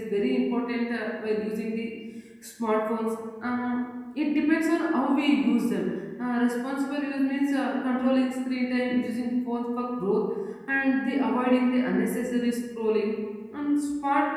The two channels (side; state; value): both; identical; correlation 1.00